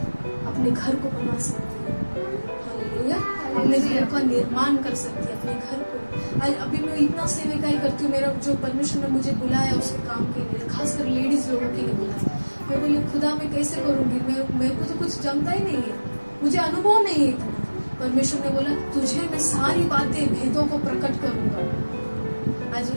अपने घर को बना सकती है। हालेलुया। अपने घर का निर्माण कर सकती है, अपने घर को। आज अभी मैं इतना सेविकाई करती हूँ, मेरा जो परमेश्वर ने मुझे बुलाया उसके काम के लिए, खासकर लेडीज लोगों के लिए बुलाया। मैं बोली खुदा मैं कैसे करूंगी, मेरे को तो कुछ जमता ही नहीं है, मुझे अनुभव नहीं है इतना। परमेश्वर ने बोला तुझे मैं सारी बातें, भेदों को प्रकट करूंगा। आज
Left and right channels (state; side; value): inverted; both; correlation -1.00